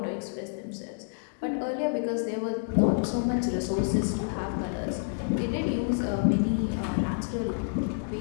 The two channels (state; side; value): silent; right; 59 dB below the other